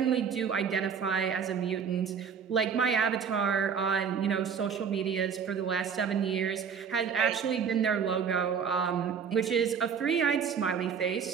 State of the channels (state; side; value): quieter; left; 6.9 dB